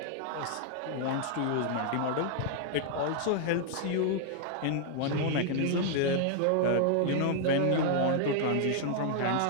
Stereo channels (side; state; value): both; different; correlation 0.00